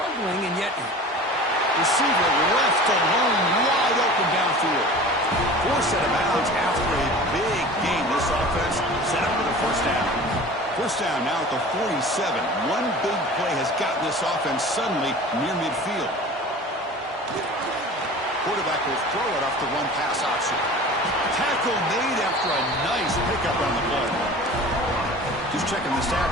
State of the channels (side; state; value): both; normal; correlation 0.39